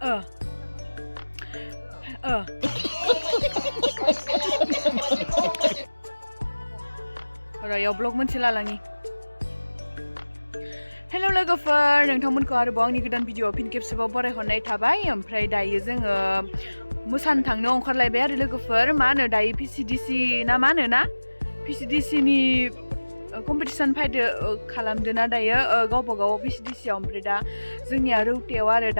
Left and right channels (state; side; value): inverted; both; correlation -1.00